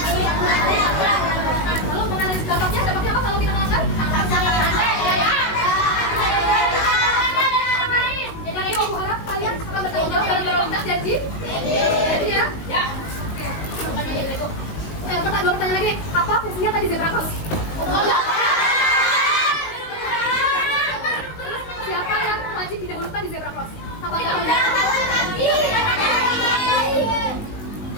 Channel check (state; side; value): late; right; 19 ms